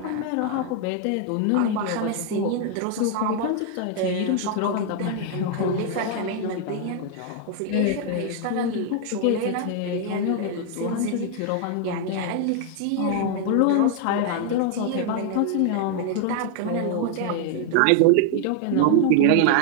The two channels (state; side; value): different; both; correlation 0.00